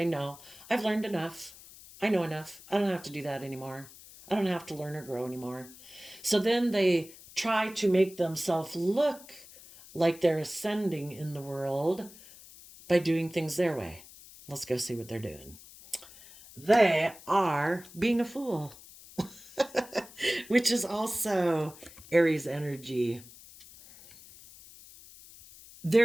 no, I've learned enough. I know enough. I don't have to do that anymore. I don't have to learn or grow anymore. So then they try to make themselves look like they're ascending in the world by doing things their way. Let's go see what they're doing. They are being a fool, which is also Aries energy.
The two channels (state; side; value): noise; left; hiss, 20 dB below the sound